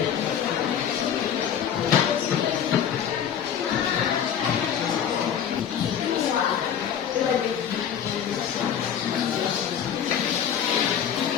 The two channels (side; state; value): right; quieter; 8.8 dB